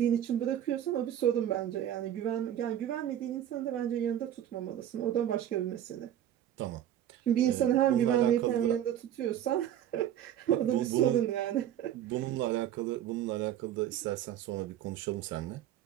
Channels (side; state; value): left; quieter; 11.1 dB